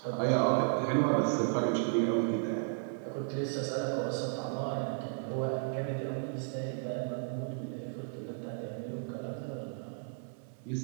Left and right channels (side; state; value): left; silent; 55 dB below the other